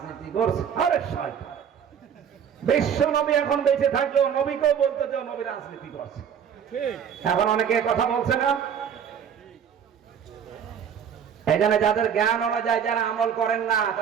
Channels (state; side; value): quieter; left; 8.1 dB